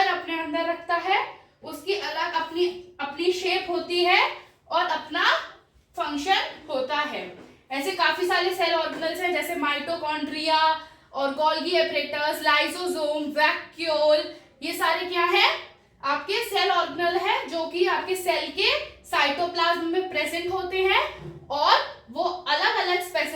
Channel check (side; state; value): both; identical; correlation 1.00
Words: अपने अंदर रखता है, उसकी अलग अपनी शेप होती है और अपना फंक्शन होता है। ऐसे काफी सारे सेल ऑर्गेनल्स हैं जैसे माइटोकॉन्ड्रिया और गोल्गी एपरेटस, लाइसोसोम, वैक्यूल, ये सारे क्या है आपके सेल ऑर्गेनल है जो कि आपके सेल के साइटोप्लाज्म में प्रेजेंट होते हैं और वो अलग अलग